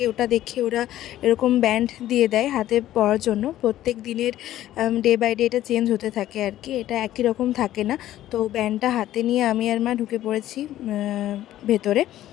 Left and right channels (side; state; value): right; quieter; 13.4 dB